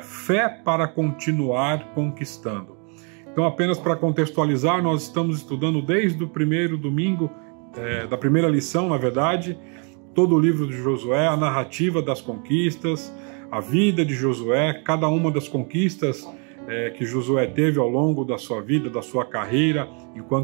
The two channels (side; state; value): left; quieter; 37.2 dB